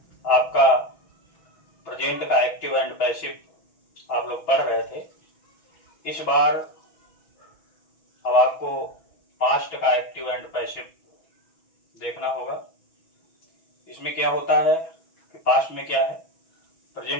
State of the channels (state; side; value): late; right; 6.2 ms